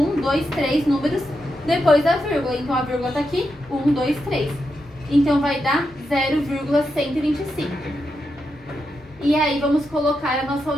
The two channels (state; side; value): normal; both; correlation 0.85